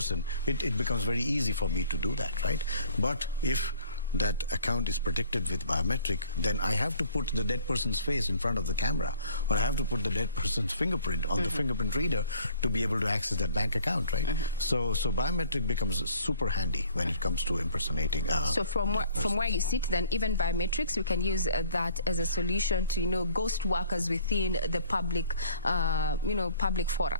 it becomes very easy for me to do that, right? But if that account is protected with biometric, then I have to put the dead person's face in front of the camera, or I have to put the dead person's fingerprint on the fingerprint reader to be able to access that bank account, right? So biometric becomes super handy when it comes to impersonating. So from where you sit, then even biometrics, we can use that as a solution to ghost workers within the public, public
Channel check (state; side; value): inverted; both; correlation -0.54